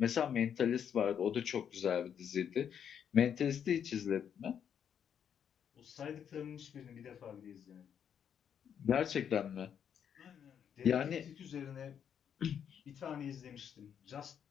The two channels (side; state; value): right; quieter; 8.3 dB